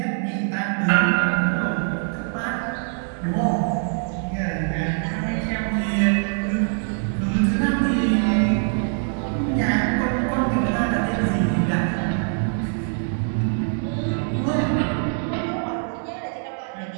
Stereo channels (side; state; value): left; silent; 56 dB below the other